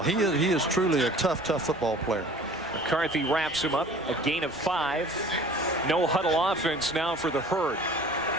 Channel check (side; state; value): both; normal; correlation 0.47